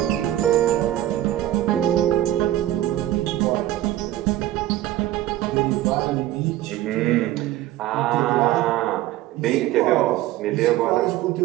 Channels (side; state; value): left; quieter; 14.2 dB